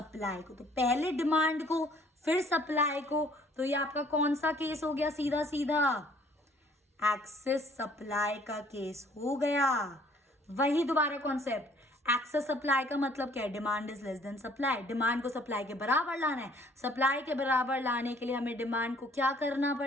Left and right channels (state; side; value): normal; both; correlation 0.59